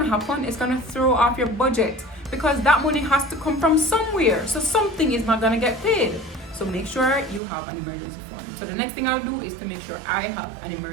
happen? It's gonna throw off your budget, because that money has to come from somewhere. So something is not gonna get paid. So make sure you have an emergency fund. So the next thing I'll do is to make sure I have an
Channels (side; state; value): left; drops out; at 7.4 s